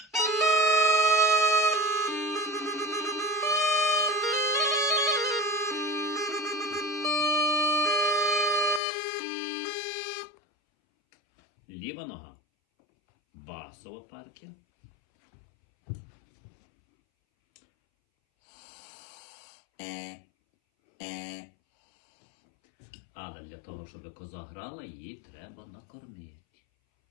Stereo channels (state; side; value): drops out; right; at 8.8 s